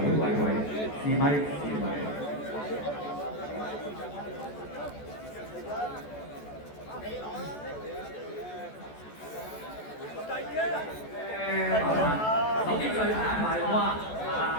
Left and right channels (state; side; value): late; right; 14 ms